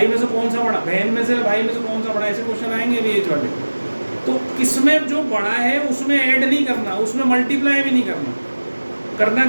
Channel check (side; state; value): both; inverted; correlation -1.00